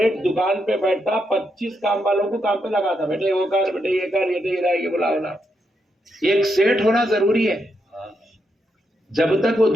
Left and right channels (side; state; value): both; normal; correlation 0.81